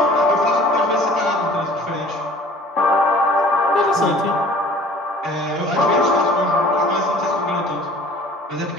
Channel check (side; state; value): both; normal; correlation 0.49